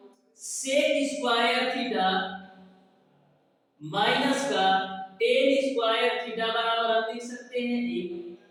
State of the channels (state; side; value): identical; both; correlation 1.00